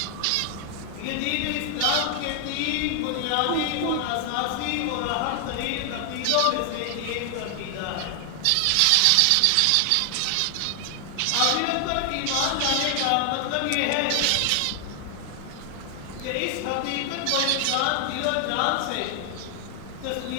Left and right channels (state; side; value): different; both; correlation 0.00